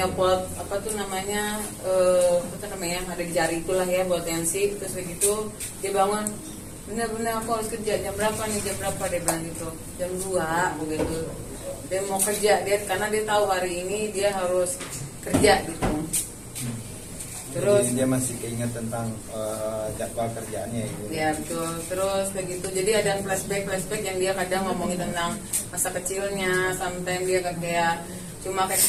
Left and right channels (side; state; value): both; identical; correlation 1.00